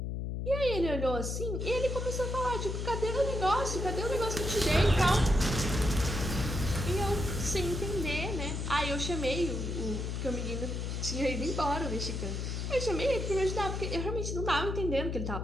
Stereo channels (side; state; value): left; noise; hum, 3 dB below the sound